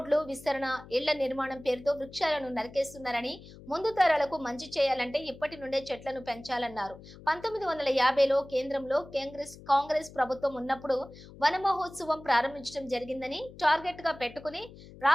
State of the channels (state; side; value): noise; left; hum, 18 dB below the sound